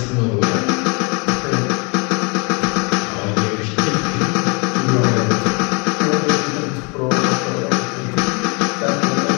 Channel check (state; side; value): quieter; right; 31.9 dB